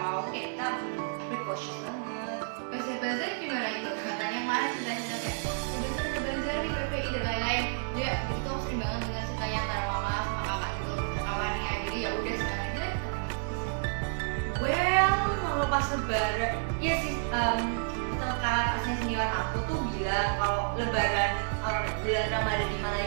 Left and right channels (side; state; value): left; silent; digital silence